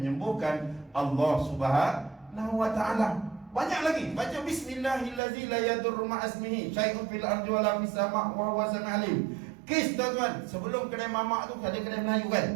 Allah Subhanahu wa ta'ala. Banyak lagi. Baca bismillahillazi la yadurru ma'asmihi syai'un fil ardi wala fis sama' wa huwa sami'ul alim. Kes tuan-tuan, sebelum kedai mamak tu ada kedai Melayu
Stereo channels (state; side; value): drops out; left; at 5.2 s